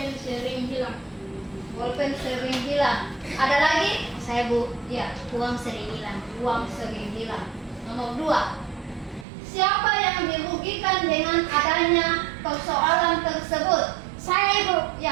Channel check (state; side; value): drops out; left; at 9.2 s